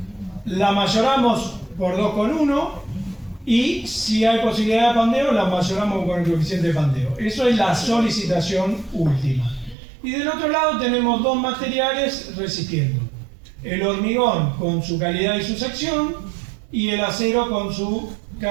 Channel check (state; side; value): drops out; left; at 9.8 s